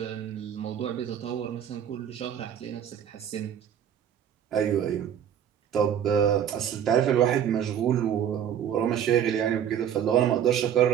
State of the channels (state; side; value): quieter; left; 9.3 dB